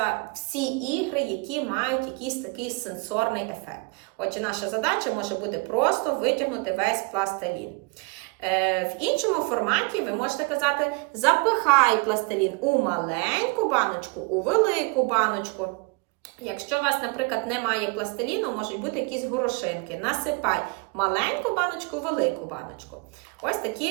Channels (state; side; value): quieter; left; 29.9 dB